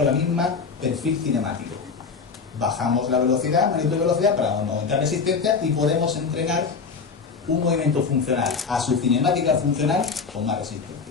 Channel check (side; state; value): right; quieter; 5.2 dB